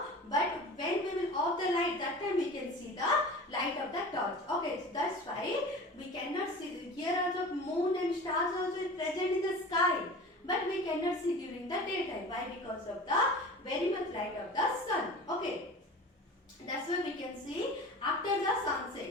but when we will off the light, that time we can see the light of the torch. Okay, so that's why we cannot see. Here also moon and stars also is present in the sky, but we cannot see during the daytime. Why? Because of the very much light of the sun. Okay. That's why we can see after the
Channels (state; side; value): normal; both; correlation 0.37